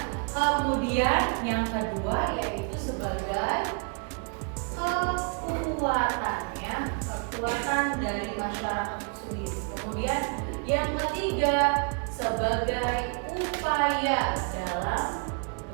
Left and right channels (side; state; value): left; quieter; 39.3 dB